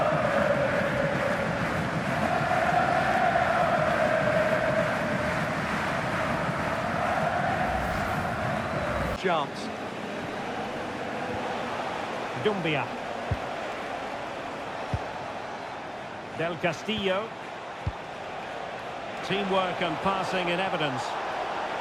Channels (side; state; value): both; identical; correlation 1.00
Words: Chance. Dumbia. Del Castillo. Teamwork and passing in evidence.